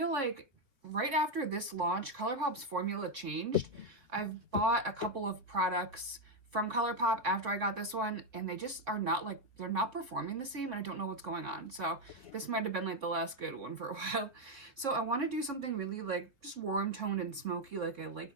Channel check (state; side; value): late; left; 3.7 ms